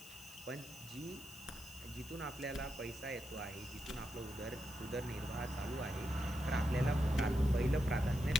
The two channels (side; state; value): left; noise; hiss, 17 dB below the sound